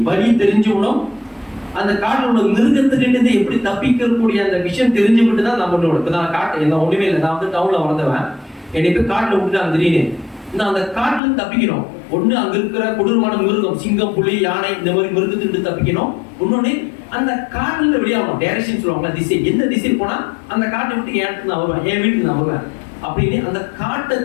வழி தெரிஞ்சுக்கணும். அந்த காட்டுல உள்ள மிருகத்துக்கிட்ட எப்படி தப்பிக்கக்கூடிய அந்த விஷயம் தெரிஞ்சுக்கிட்டு தான் நம்ம இப்போ நான் காட்டு என்ன ஒண்ணுமே இல்லை. நான் வந்து டவுன்ல வளர்ந்தவன், என்னை போய் காட்டுல விட்டுட்டாங்க திடீர்னு. நான் அந்த காட்டுல இருந்து தப்பிக்கணும். ஒண்ணு அங்க இருக்கிற கொடூரமான மிருகம், சிங்கம், புலி, யானை, இந்த மாதிரி மிருகத்துக்கிட்ட தப்பிக்கணும். இன்னொன்னு அந்த காட்டுல இருந்து வெளியாகணும். டைரக்ஷன் சொல்லுவாங்களா, திசை, எந்த திசையில் போனா அந்த காட்டை விட்டு என் இடத்துக்கு நான் வருவேன், என் வீட்டுக்கு நான் வருவேன் அப்படின்னு அந்த காட்டை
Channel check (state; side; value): drops out; right; at 11.2 s